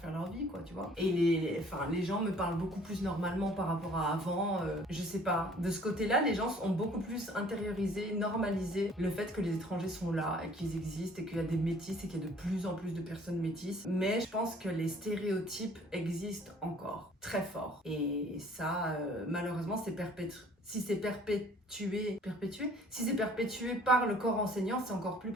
leur vie, quoi, tu vois. Et les gens me parlent beaucoup plus normalement par rapport à avant. Je sais pas. De ce côté-là, les gens ont beaucoup plus intériorisé, normalisé le fait que les étrangers sont là et qu'ils existent et qu'il y a des métis et qu'il y a de plus en plus de personnes métisses. Mais je pense que les stéréotypes existent encore très fort. Et ça, malheureusement, c'est Si c'est perpétué, si c'est perpétué par le corps enseignant, c'est encore plus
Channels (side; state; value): both; normal; correlation 0.55